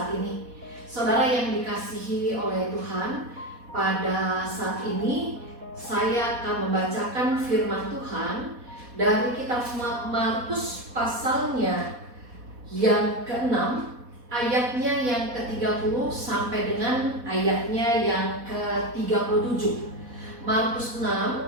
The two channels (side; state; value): left; late; 4.1 ms